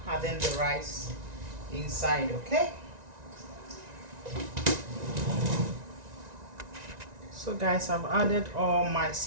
adding the rice inside. Okay? So guys, I've added all my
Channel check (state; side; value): late; left; 1.9 ms